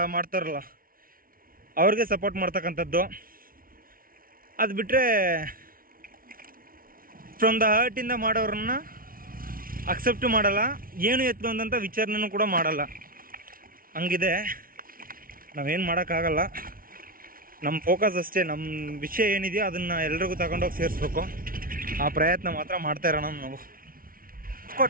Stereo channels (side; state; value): left; late; 0.42 ms